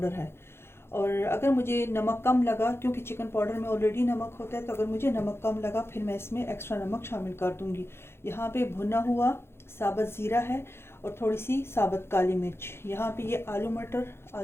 है। और अगर मुझे नमक कम लगा, क्योंकि चिकन पाउडर में ऑलरेडी नमक होता है, तो अगर मुझे नमक कम लगा फिर मैं इसमें एक्स्ट्रा नमक शामिल कर दूँगी। यहाँ पे भुना हुआ साबुत ज़ीरा है और थोड़ी सी साबुत काली मिर्च। यहाँ पे ये आलू मटर,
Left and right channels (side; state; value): right; late; 0.12 ms